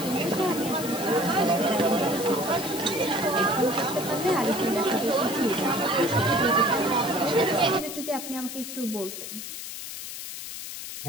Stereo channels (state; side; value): noise; left; hiss, 9 dB below the sound